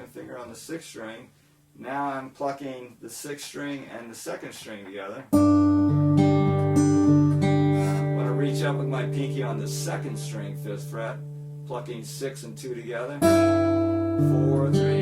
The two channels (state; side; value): identical; both; correlation 1.00